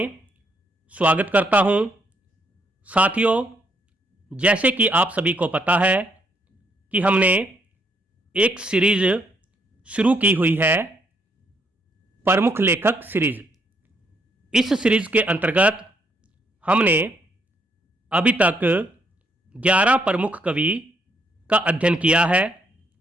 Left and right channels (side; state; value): both; normal; correlation 0.72